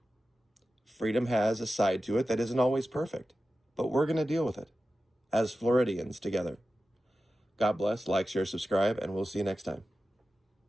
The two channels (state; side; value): normal; both; correlation 0.93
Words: freedom has a side to it that isn't always perfect, but we're going to deal with it as Floridians together. God bless, like, share, subscribe, and we'll see you next time.